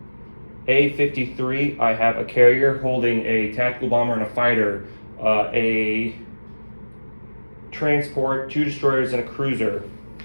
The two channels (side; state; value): both; inverted; correlation -1.00